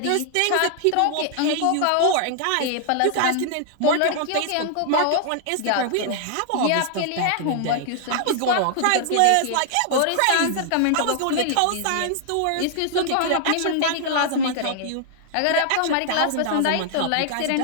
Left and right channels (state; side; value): different; both; correlation 0.00